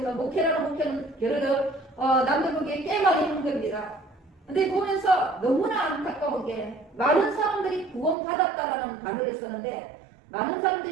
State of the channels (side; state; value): left; drops out; at 8.2 s